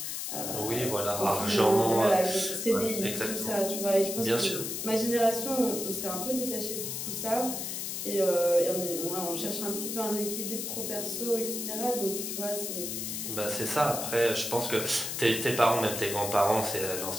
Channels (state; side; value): noise; left; hiss, 4 dB below the sound